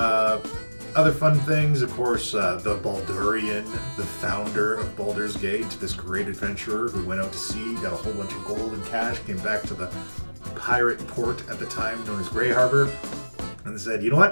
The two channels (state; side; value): inverted; both; correlation -1.00